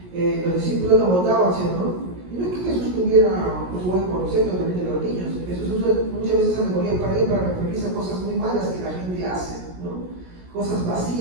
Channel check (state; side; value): late; left; 17 ms